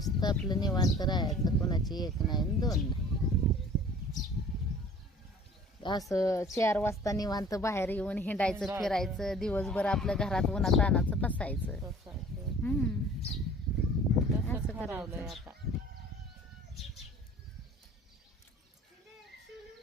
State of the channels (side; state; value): both; normal; correlation 0.49